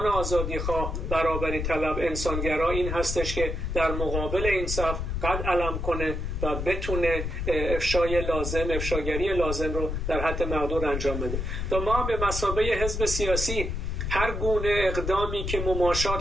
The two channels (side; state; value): left; noise; rumble, 3 dB below the sound